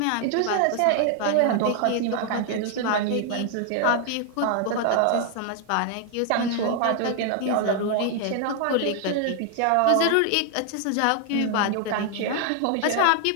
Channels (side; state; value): both; different; correlation 0.00